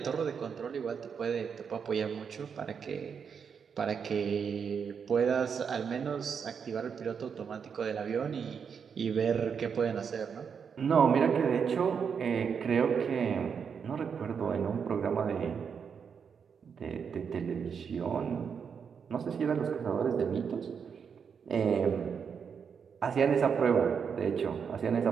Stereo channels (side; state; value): left; quieter; 6.6 dB